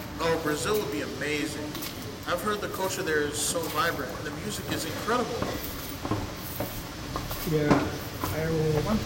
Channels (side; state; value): both; identical; correlation 1.00